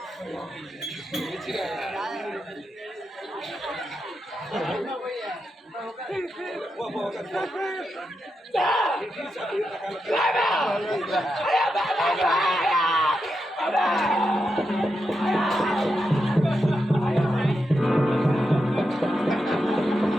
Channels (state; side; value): normal; both; correlation 0.86